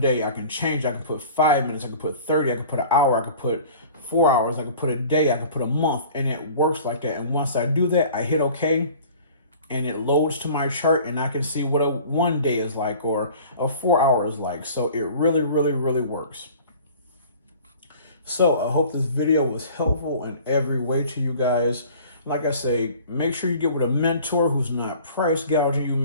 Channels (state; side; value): inverted; both; correlation -0.46